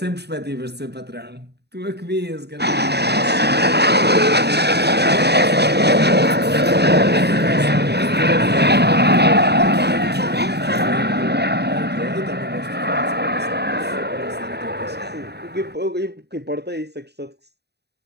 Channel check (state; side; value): late; left; 0.48 ms